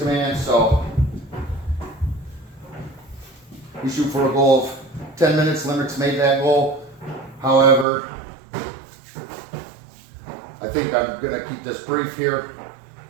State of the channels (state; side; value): drops out; left; at 7.9 s